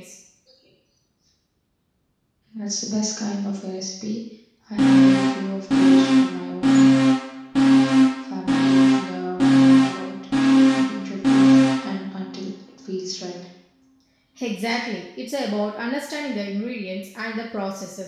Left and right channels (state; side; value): identical; both; correlation 1.00